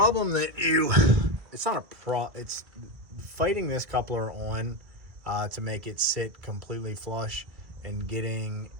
that it's fighting this coupler on to make it sit completely flush and getting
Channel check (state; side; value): late; left; 2.0 ms